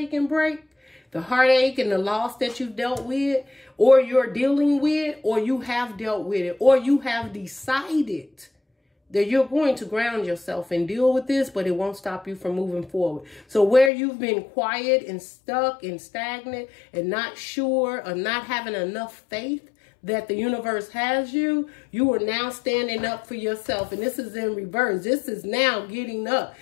and break, the heartache and the loss that you've dealt with, or you're dealing with, or you have dealt with it, or you have decided that you're going to ground yourself and deal with this, but it won't stop you from moving forward. So where you've been quiet and stuck and stagnant and not sure or not having enough faith that the universe has you, you are now standing up for yourself. And this is in reverse. This is now getting up.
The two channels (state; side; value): drops out; right; at 13.9 s